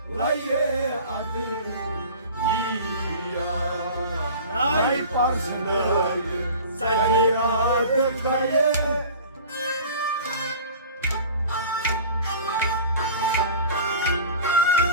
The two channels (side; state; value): both; inverted; correlation -0.40